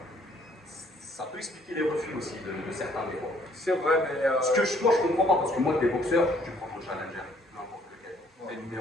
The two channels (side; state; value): both; normal; correlation 0.63